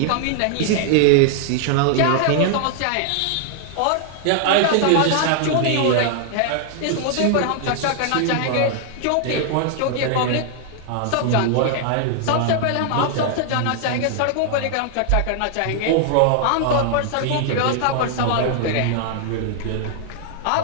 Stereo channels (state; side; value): different; both; correlation 0.00